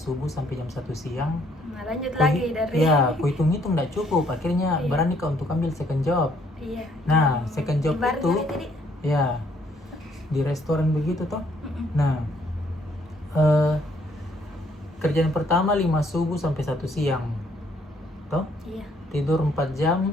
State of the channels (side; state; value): both; normal; correlation 0.66